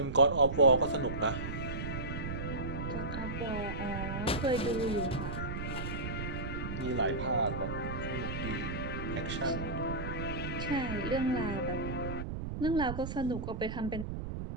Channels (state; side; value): noise; right; rumble, 5 dB below the sound